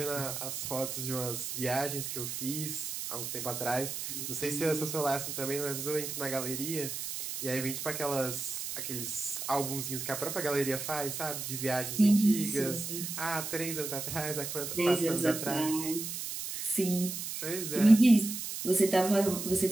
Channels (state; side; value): noise; right; hiss, 5 dB below the sound